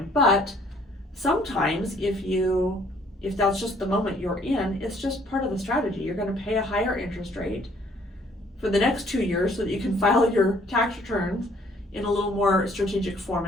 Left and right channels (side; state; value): both; normal; correlation 0.61